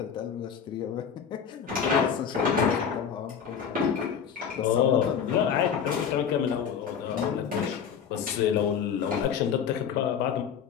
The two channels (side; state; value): right; quieter; 7.5 dB